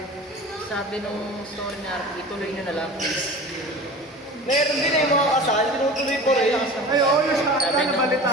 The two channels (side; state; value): both; normal; correlation 0.36